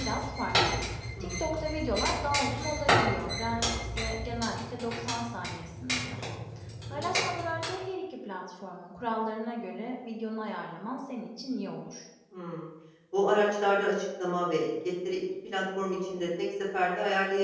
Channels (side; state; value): both; identical; correlation 1.00